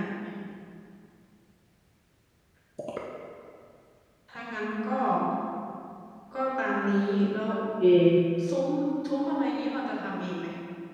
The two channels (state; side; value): identical; both; correlation 1.00